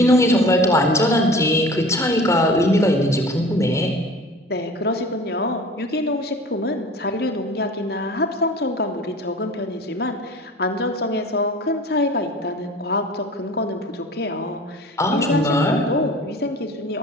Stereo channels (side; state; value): both; normal; correlation 0.42